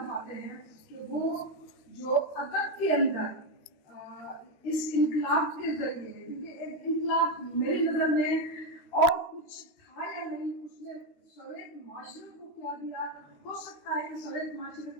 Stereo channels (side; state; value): right; late; 13 ms